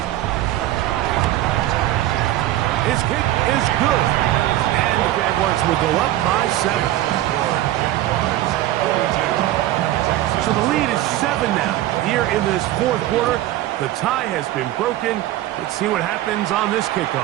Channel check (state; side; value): quieter; left; 14.7 dB